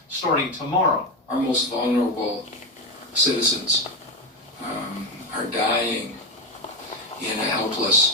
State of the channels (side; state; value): both; normal; correlation 0.11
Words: starting tomorrow. Our most vulnerable citizens are dying in a